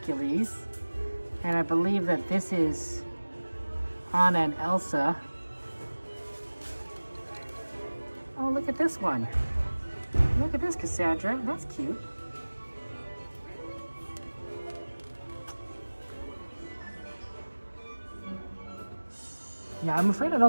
And I believe that this is Anna and Elsa. Oh, look at this one. Look at this, Cassandra. That's cute. Yeah, I'm afraid I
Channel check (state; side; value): inverted; both; correlation -1.00